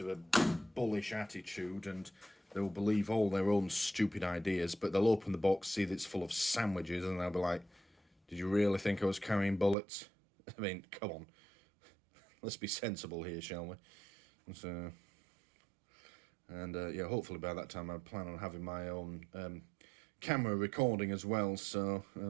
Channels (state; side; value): drops out; left; at 9.8 s